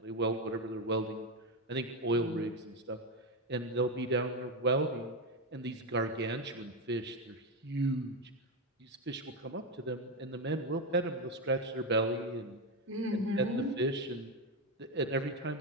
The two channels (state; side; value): normal; both; correlation 0.10